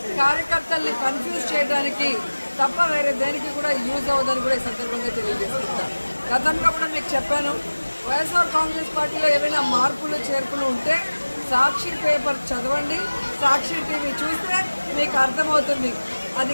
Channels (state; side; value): inverted; both; correlation -1.00